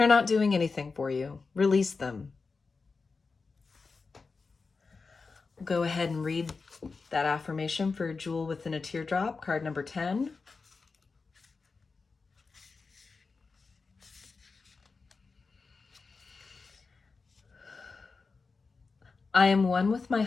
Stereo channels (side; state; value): right; quieter; 4.4 dB